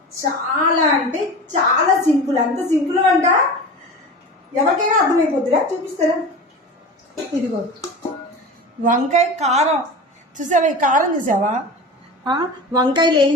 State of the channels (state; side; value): normal; both; correlation 0.32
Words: చాలా అంటే చాలా సింపుల్, అంత సింపుల్ వంట ఎవరికైనా అర్థమైపోద్దిరా. చూపిస్తారా? ఇదిగో వంకాయ కారం చూసావా? ఈ కారం చూసావా? వంకాయలు